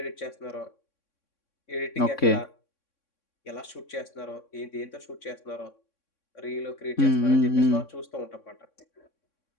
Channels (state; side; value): late; right; 3.6 ms